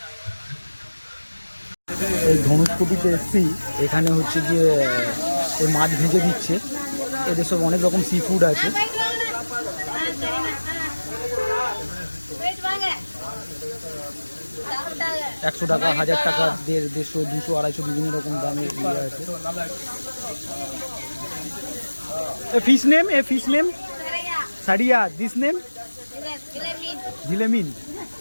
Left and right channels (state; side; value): inverted; both; correlation -1.00